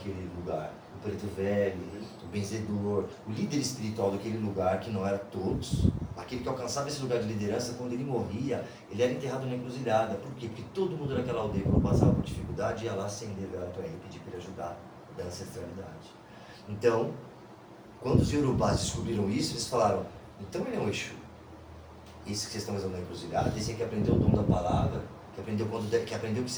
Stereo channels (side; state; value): both; identical; correlation 1.00